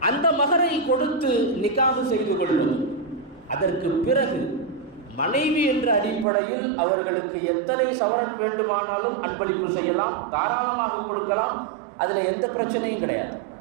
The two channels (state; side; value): drops out; left; at 6.2 s